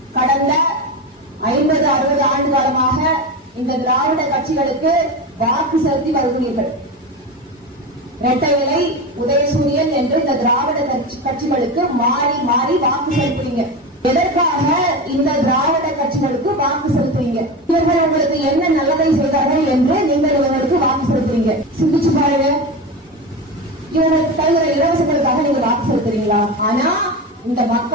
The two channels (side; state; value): both; normal; correlation 0.22